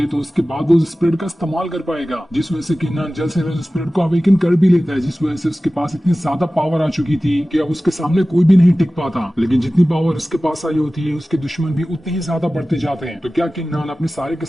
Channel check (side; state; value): both; normal; correlation 0.96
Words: तो उसके बाद वो स्पिरिट का इस्तेमाल कर पाएगा, जिस वजह से किन्नान जल्द से जल्द स्पिरिट को अवेकन कर भी लेता है, जिस वजह से उसके पास इतनी ज्यादा पावर आ चुकी थी कि अब उसके सामने कोई भी नहीं टिक पाता। लेकिन जितनी पावर उसके पास आई होती है उसके दुश्मन भी उतने ही ज्यादा बढ़ते जाते हैं। तो क्या किन्नान अपने सारे के